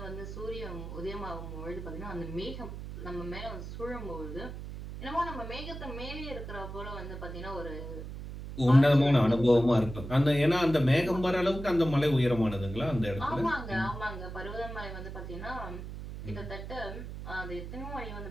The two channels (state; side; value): noise; right; hum, 9 dB below the sound